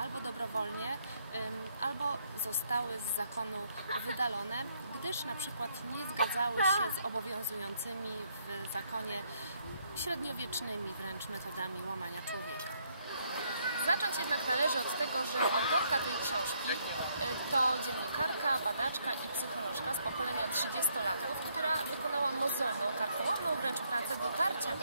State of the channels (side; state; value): both; inverted; correlation -0.72